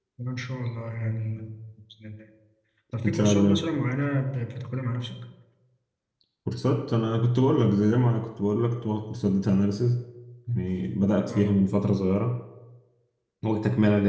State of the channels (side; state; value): both; identical; correlation 1.00